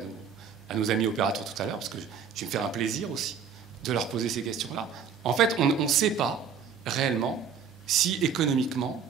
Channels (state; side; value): quieter; left; 6.7 dB